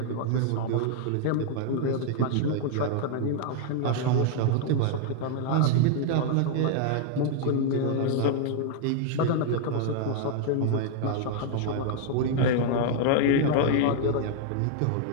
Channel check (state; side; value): different; both; correlation 0.00